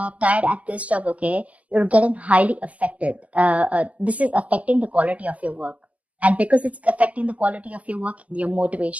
tired at this job, okay, you're getting highly affected. This is affecting the quality of your work. And because it's affecting the quality of your work, your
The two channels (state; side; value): late; left; 0.072 ms